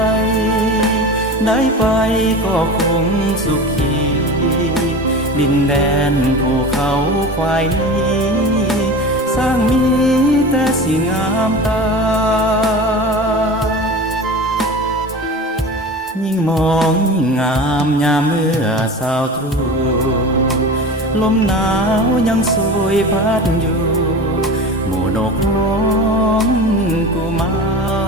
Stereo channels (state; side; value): normal; both; correlation 0.33